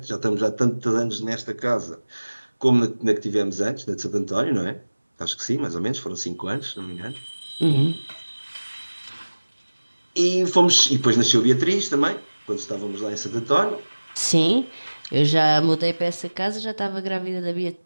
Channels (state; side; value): inverted; both; correlation -1.00